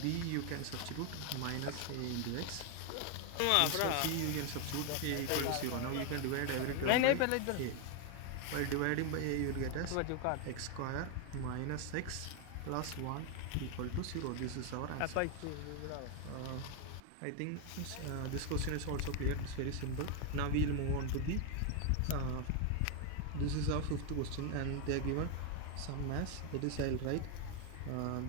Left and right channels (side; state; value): both; different; correlation 0.01